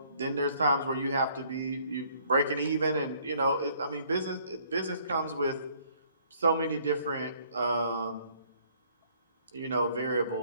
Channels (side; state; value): both; inverted; correlation -0.62